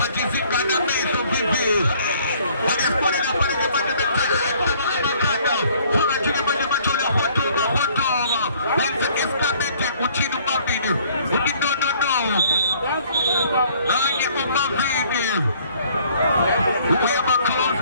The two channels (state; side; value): inverted; both; correlation -0.59